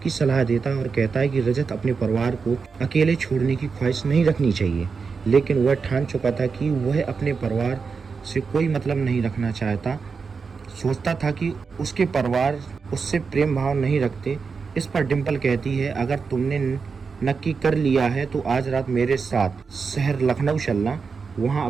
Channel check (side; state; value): left; quieter; 5.2 dB